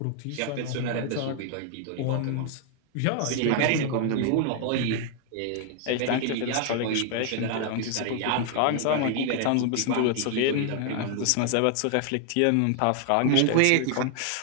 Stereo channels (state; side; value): different; both; correlation 0.00